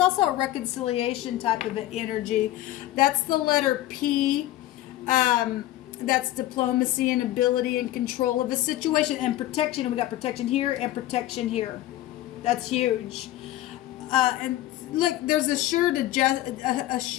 a reconciliation type of an energy. That's the letter P. That's diplomacy and ability and control of a situation and protection. And we got protection here and protection here. That's huge. And look, there's assured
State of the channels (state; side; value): quieter; right; 14.9 dB